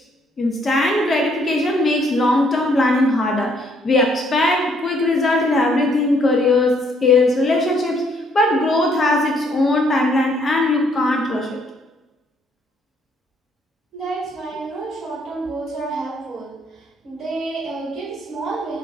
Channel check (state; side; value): normal; both; correlation 0.68